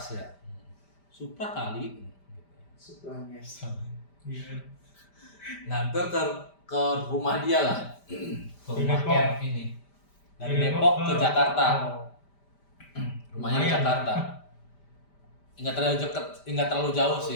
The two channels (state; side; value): late; right; 5.1 ms